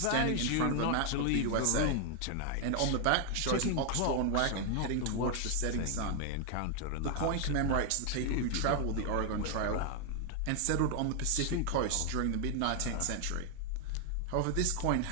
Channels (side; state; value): both; different; correlation 0.00